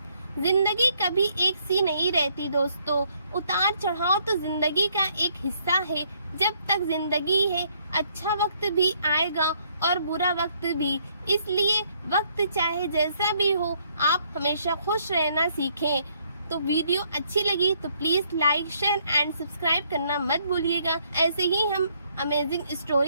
जिंदगी कभी एक सी नहीं रहती दोस्तों। उतार चढ़ाव तो जिंदगी का एक हिस्सा है। जब तक जिंदगी है, अच्छा वक्त भी आएगा और बुरा वक्त भी। इसलिए वक्त चाहे जैसा भी हो, आप हमेशा खुश रहना सीखें। तो वीडियो अच्छी लगी तो please like, share and subscribe करना मत भूलिएगा। ऐसे ही हम अमेजिंग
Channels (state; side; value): inverted; both; correlation -0.68